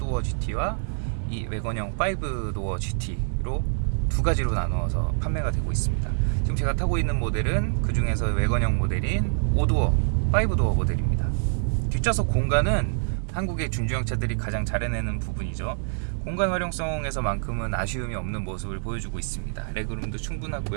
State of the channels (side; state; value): left; silent; digital silence